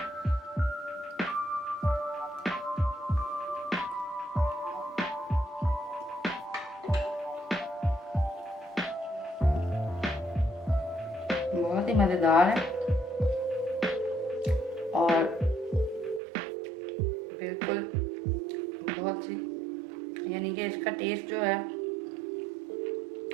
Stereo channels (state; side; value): drops out; left; at 16.2 s